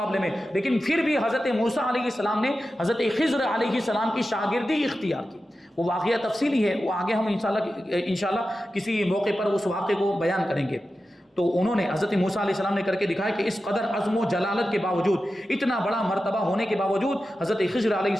میں, لیکن پھر بھی حضرت موسیٰ علیہ السلام نے حضرت خضر علیہ السلام کی شاگردی اختیار کی. وہ واقعہ تفصیلی ہے, وہ آگے ہم انشاءاللہ کسی موقع پر اس واقعے کو بیان کریں گے. تو انہوں نے حضرت موسیٰ علیہ السلام نے کر کے دکھایا کہ اس قدر عزم و جلالت کے باوجود, اتنا بڑا مرتبہ ہونے کے باوجود حضرت خضر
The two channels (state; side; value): normal; both; correlation 0.92